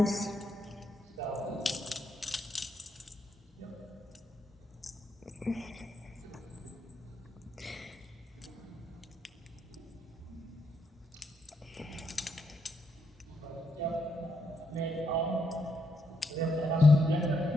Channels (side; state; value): both; normal; correlation 0.78